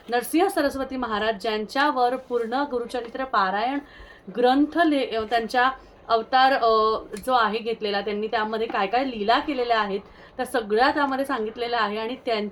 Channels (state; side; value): identical; both; correlation 1.00